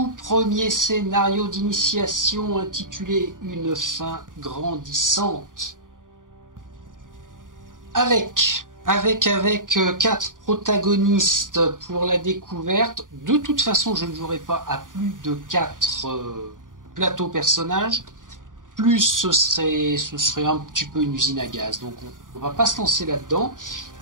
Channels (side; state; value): left; late; 0.88 ms